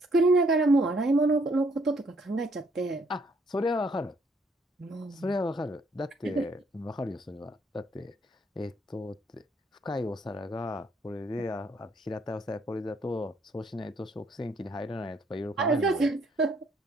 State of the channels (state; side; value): normal; both; correlation 0.67